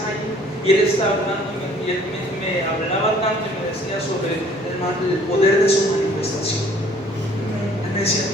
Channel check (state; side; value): normal; both; correlation 0.56